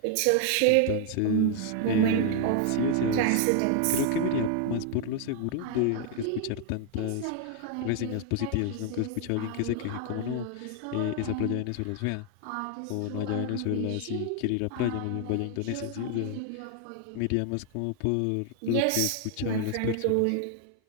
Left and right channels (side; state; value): both; different; correlation 0.00